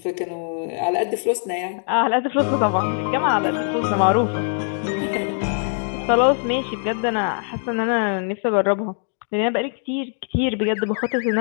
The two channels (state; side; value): silent; right; 64 dB below the other